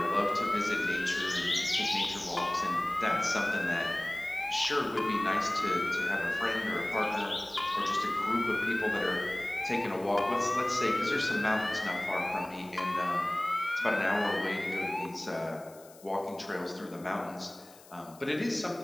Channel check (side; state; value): left; noise; hiss, 23 dB below the sound